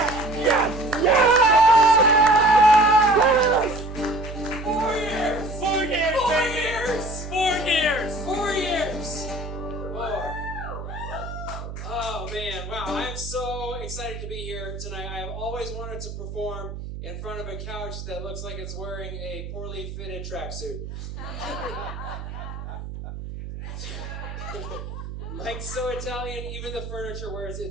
Yes! Yes! 4 years! 4 years, baby! 4 years! 4 years! 4. Oh man, wow, I am so excited to be here tonight. I have always wanted to perform in front of a couch that looks like it's wearing a poorly fitted tracksuit. Mike's so Italian, even the furniture wears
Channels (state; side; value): noise; right; hum, 9 dB below the sound